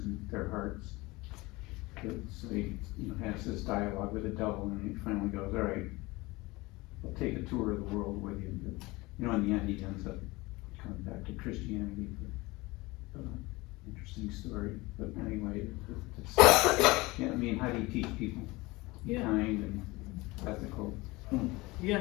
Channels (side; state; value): right; quieter; 22.2 dB